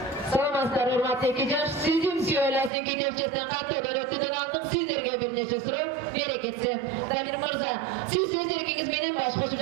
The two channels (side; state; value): left; drops out; at 2.7 s